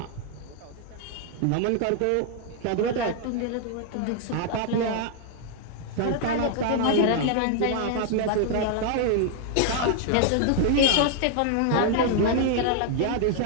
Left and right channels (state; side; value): different; both; correlation 0.00